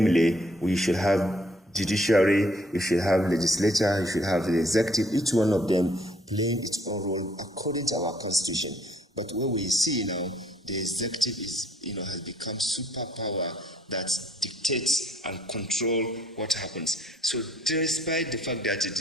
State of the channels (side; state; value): both; normal; correlation 0.64